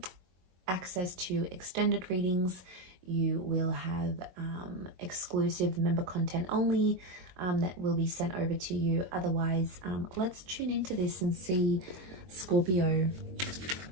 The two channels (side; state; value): left; late; 22 ms